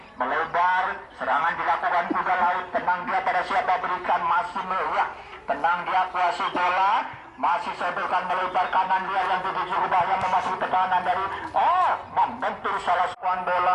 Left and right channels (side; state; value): both; identical; correlation 1.00